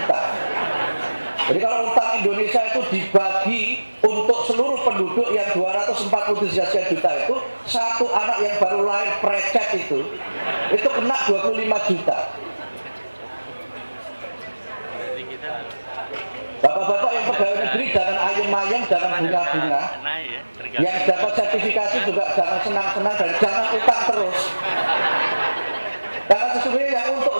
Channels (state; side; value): inverted; both; correlation -1.00